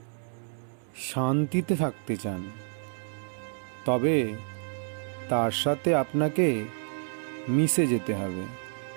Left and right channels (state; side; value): silent; left; digital silence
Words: শান্তিতে থাকতে চান তবে তার সাথে আপনাকে মিশে যেতে হবে,